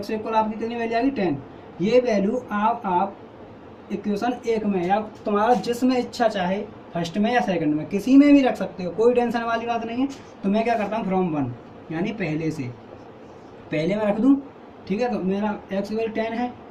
इक्वल आपकी कितनी वैल्यू आएगी, 10। ये वैल्यू आप इक्वेशन 1 में या तुम्हारा जिसमें इच्छा चाहे, फर्स्ट में या सेकंड में, किसी में भी रख सकते हो, कोई टेंशन वाली बात नहीं है। तो मैं क्या करता हूँ, फ्रॉम 1 यानी पहले में रख दूँ। ठीक है, तो मेरा x इक्वल 10 है,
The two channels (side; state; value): both; identical; correlation 1.00